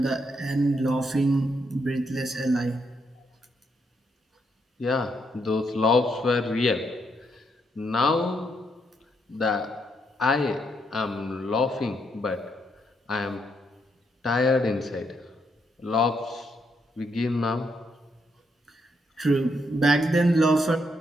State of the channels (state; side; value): normal; both; correlation 0.77